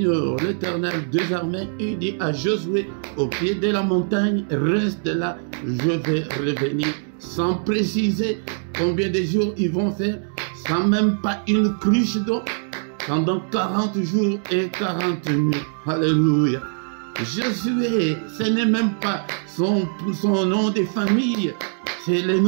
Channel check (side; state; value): left; silent; digital silence